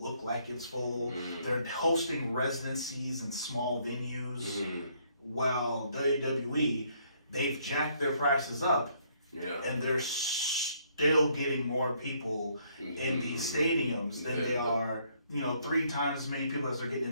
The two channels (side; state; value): both; inverted; correlation -0.68